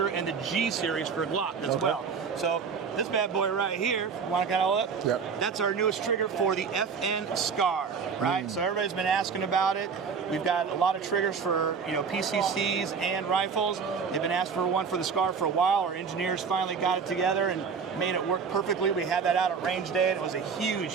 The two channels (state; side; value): quieter; left; 5.9 dB